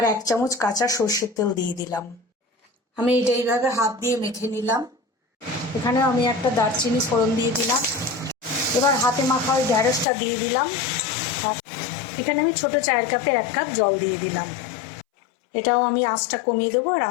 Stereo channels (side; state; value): right; drops out; at 10.1 s